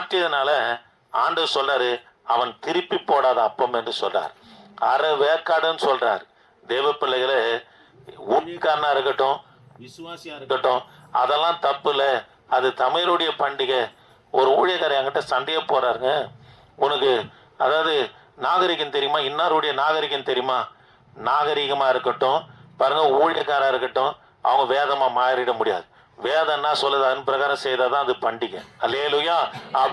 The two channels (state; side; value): identical; both; correlation 1.00